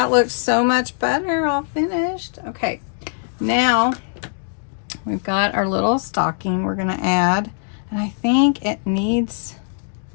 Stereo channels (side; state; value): right; silent; digital silence